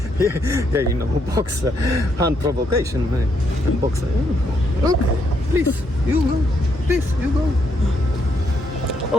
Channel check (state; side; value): normal; both; correlation 0.75